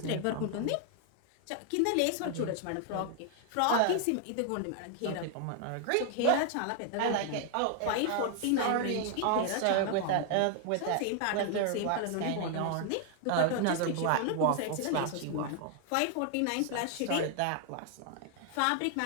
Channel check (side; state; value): both; different; correlation 0.00